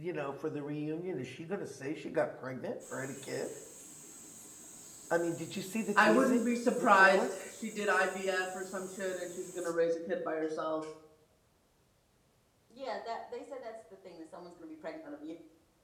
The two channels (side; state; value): both; identical; correlation 1.00